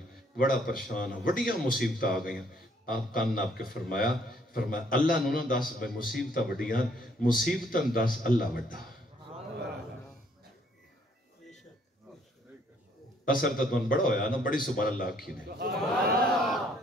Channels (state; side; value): normal; both; correlation 0.65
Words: بڑا پریشان وڑیاں مصیبتیں آ گئیاں. آپ کان ناپ کے فرمایا اللہ نو نہ دس بے مصیبتاں وڈیاں مصیبتاں دس اللہ وڈا. اثر تدون بڑا ہویا نا بڑی سبحان اللہ آکھی نے